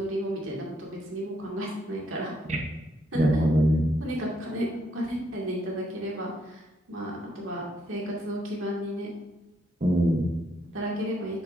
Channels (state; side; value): normal; both; correlation 0.73